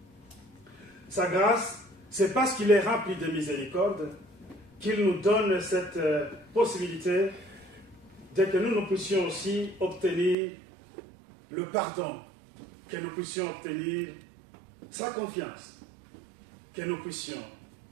Sa grâce, c'est parce qu'il est rempli de miséricorde qu'il nous donne cette possibilité de que nous puissions aussi obtenir le pardon, que nous puissions obtenir sa confiance, que nous puissions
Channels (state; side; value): drops out; left; at 10.4 s